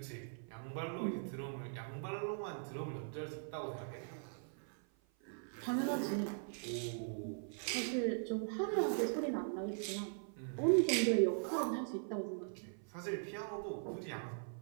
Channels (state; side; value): silent; left; 51 dB below the other